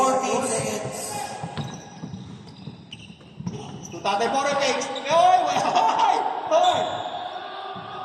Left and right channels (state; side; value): identical; both; correlation 1.00